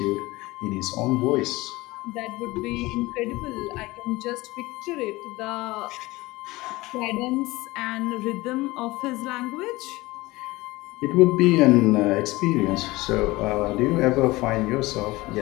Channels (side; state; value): right; quieter; 20.5 dB